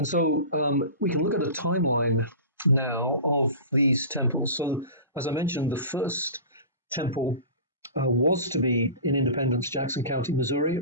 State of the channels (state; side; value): inverted; both; correlation -0.35